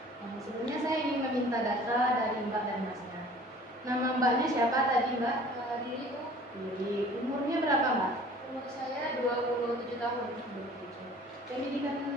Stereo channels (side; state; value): both; normal; correlation 0.49